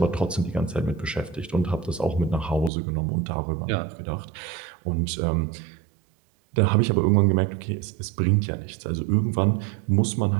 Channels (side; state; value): left; drops out; at 2.7 s